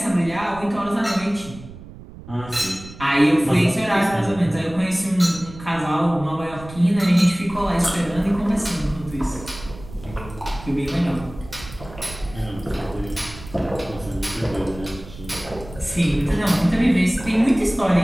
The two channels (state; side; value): noise; right; rumble, 16 dB below the sound